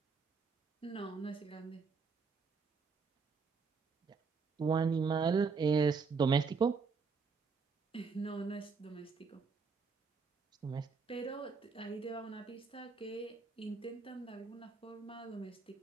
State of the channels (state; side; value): quieter; left; 5.0 dB